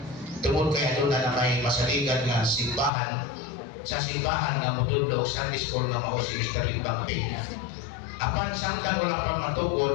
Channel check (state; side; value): drops out; right; at 2.9 s